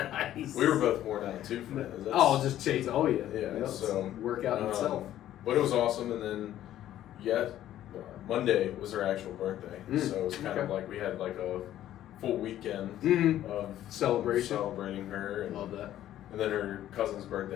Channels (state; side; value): quieter; right; 12.5 dB